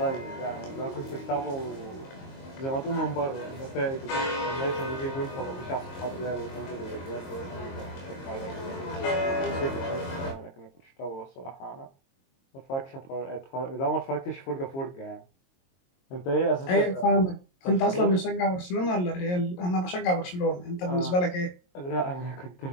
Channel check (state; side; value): late; right; 22 ms